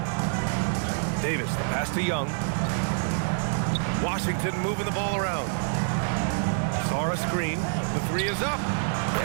Davis, the pass to Young. Washington moving the ball around. Sarr a screen. The 3 is up.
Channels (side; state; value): left; silent; 60 dB below the other